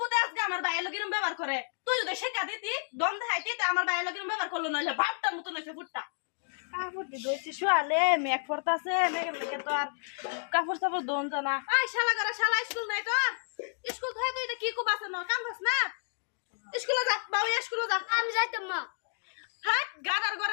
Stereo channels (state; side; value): silent; right; digital silence